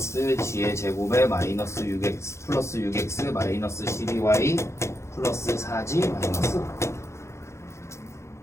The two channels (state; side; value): late; right; 0.13 ms